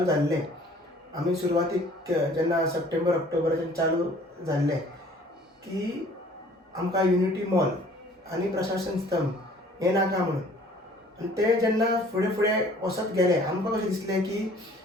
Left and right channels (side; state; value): both; normal; correlation 0.53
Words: जाल्लें, आमी सुरवातीक जेन्ना सप्टेंबर ऑक्टोबराच्यान चालू जाल्लें की आमकां युनिटी मॉल आनी प्रशासन स्तंभ हें नाका म्हणून, आनी ते जेन्ना फुडें फुडें वचत गेले, आमकां कशें दिसलें की